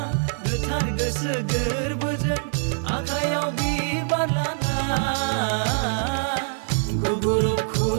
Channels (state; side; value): silent; left; digital silence